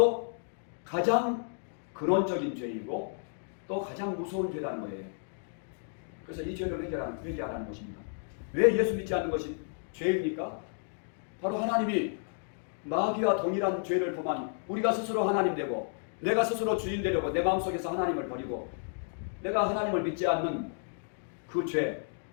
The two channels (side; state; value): right; silent; digital silence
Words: 가장 근원적인 죄이고 또 가장 무서운 죄라는 거예요. 그래서 이 죄를 회개하라는 것입니다. 왜 예수 믿지 않는 것이 죄입니까? 바로 하나님이 마귀와 동일한 죄를 범하니 우리가 스스로 하나님 되고 내가 스스로 주인 되려고 내 마음속에서 하나님을 버리고 내가 하나님을 믿지 않는 그 죄,